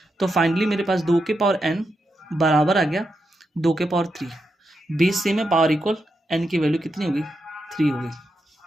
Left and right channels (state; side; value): normal; both; correlation 0.85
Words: तो फाइनली मेरे पास 2 के पावर n बराबर आ गया 2 के पावर 3, बेस सेम है, पावर इक्वल, n की वैल्यू कितनी होगी 3 हो